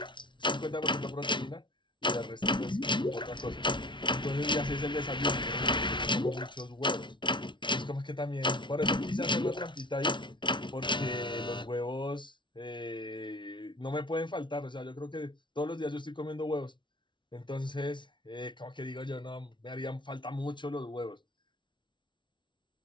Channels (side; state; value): right; late; 0.24 ms